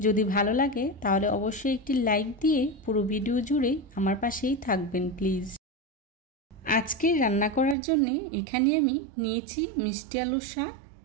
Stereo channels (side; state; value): left; drops out; at 7.8 s